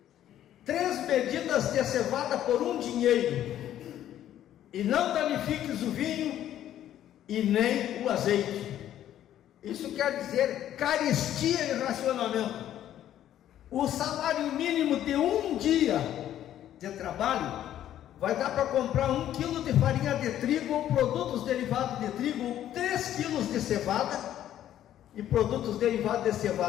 3 medidas de cevada por 1 dinheiro, e não danifiques o vinho e nem o azeite. Isso quer dizer carestia e racionamento. O salário mínimo de 1 dia de trabalho vai dar para comprar 1 quilo de farinha de trigo ou produtos derivados de trigo, ou 3 quilos de cevada e produtos derivados de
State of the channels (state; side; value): quieter; right; 11.6 dB